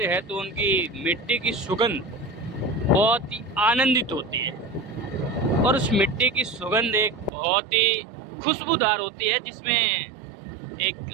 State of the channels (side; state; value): left; drops out; at 7.3 s